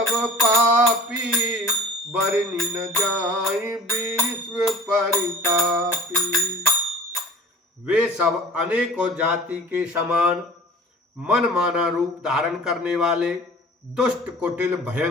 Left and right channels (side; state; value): both; normal; correlation 0.43